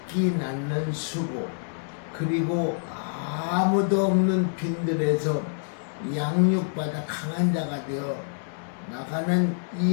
낳는 수고, 그리고 아무도 없는 빈들에서 양육받아 강한 자가 되어 나가는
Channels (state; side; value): silent; right; 60 dB below the other